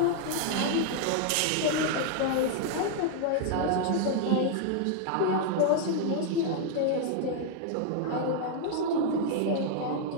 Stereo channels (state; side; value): different; both; correlation 0.00